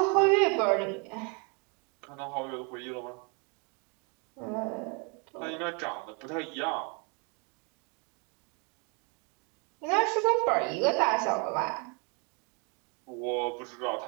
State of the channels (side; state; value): left; quieter; 34.4 dB